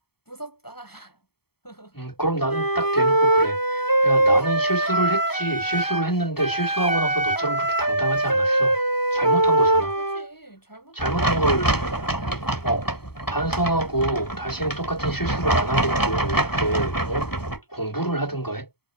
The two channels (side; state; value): right; late; 0.96 ms